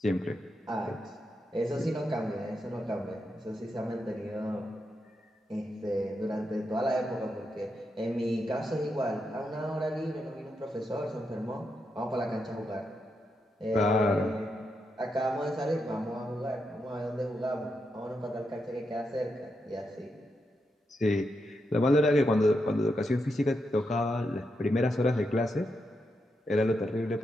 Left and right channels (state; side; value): normal; both; correlation 0.84